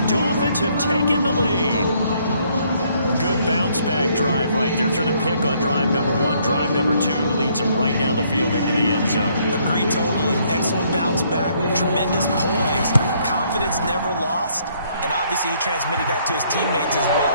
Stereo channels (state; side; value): inverted; both; correlation -0.67